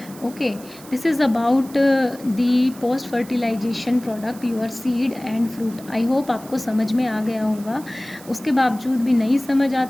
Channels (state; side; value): noise; right; hiss, 20 dB below the sound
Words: Okay, this is about the post fertilisation product your seed and fruit. I hope आपको समझ में आ गया होगा। उसके बावजूद भी नहीं समझ